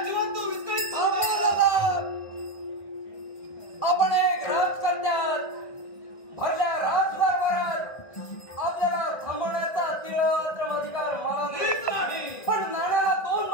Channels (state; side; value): late; right; 1.6 ms